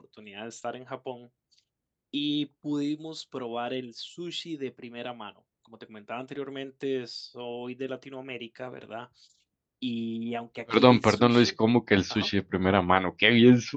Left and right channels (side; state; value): both; identical; correlation 1.00